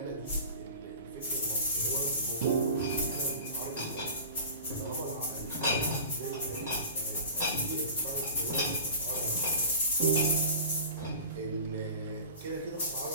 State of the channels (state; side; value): inverted; both; correlation -0.36